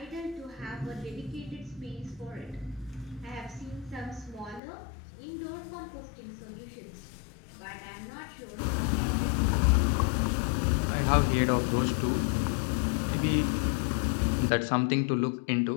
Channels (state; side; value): drops out; right; at 4.6 s